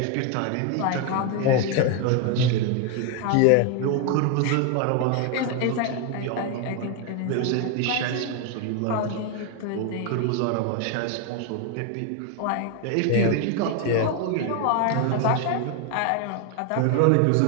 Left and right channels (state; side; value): different; both; correlation 0.01